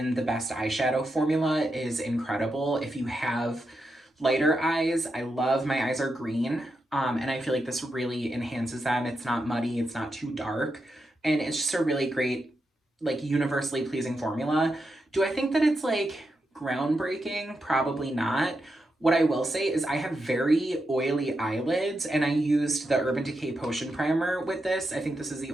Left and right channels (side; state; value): both; normal; correlation 0.86